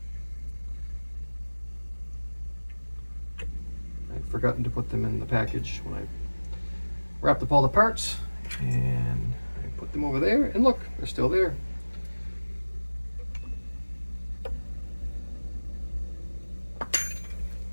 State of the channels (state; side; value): inverted; both; correlation -1.00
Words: I'd forgotten to put them in the package when I wrapped up all the parts, and I put them over there, and look, they're still there.